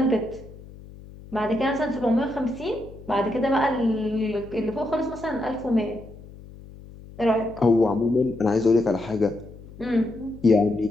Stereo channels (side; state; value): left; noise; hum, 18 dB below the sound